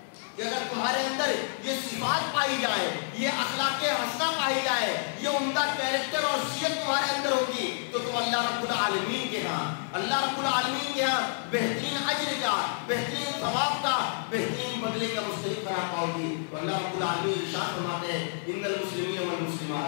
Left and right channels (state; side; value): silent; right; digital silence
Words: کہ اگر تمہارے اندر یہ صفات پائی جائے، یہ اخلاق حسنہ پائی جائے، یہ عمدہ کیریکٹر اور صفت تمہارے اندر ہوگی تو تم اللہ رب العالمین کے ہاں بہترین اجر کا، بہترین ثواب کا، بہترین بدلے کا مستحق قرار پاؤ گی. تو اللہ رب العالمین ارشاد فرماتے ہیں ان المسلمین